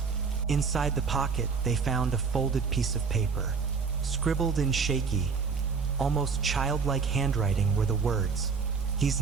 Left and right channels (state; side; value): quieter; left; 5.4 dB